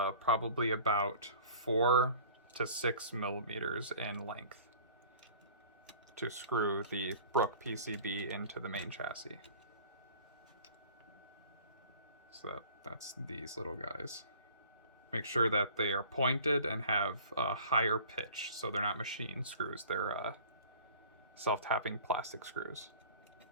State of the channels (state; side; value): inverted; both; correlation -0.46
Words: about 4 to 6 millimeters in length, to screw the Brook PCB into the main chassis. So that's these little guys. Make sure that they are pointed and have a higher pitch, so they're not machine screws, they're self-tapping plastic screws.